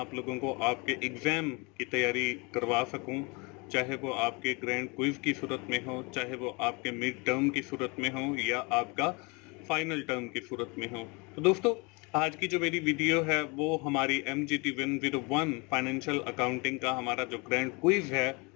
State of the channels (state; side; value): quieter; right; 29.0 dB